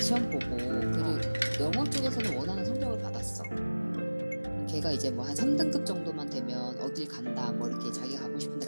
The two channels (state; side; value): inverted; both; correlation -1.00